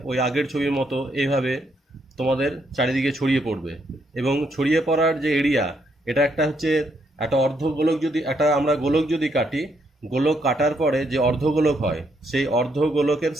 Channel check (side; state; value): both; normal; correlation 0.75